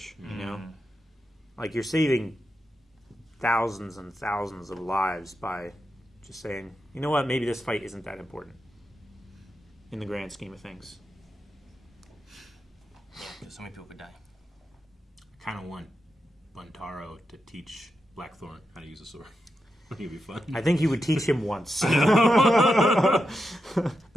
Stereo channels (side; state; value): both; normal; correlation 0.87